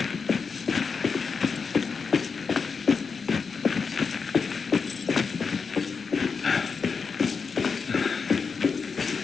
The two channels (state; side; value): quieter; right; 5.3 dB